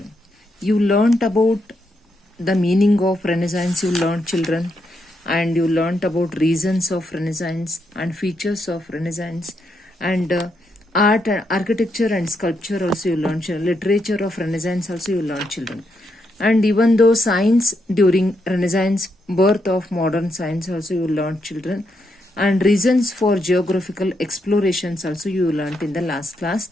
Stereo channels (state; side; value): normal; both; correlation 0.80